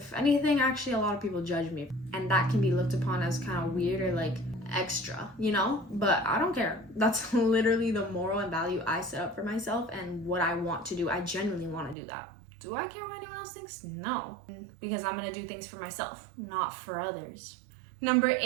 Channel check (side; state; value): left; drops out; at 12.0 s